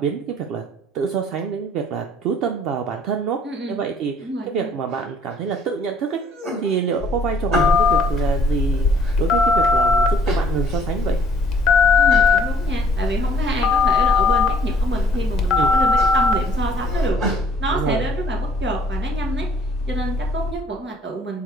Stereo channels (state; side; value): normal; both; correlation 0.59